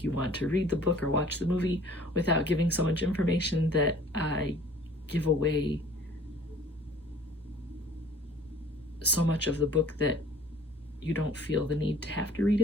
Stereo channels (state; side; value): normal; both; correlation 0.51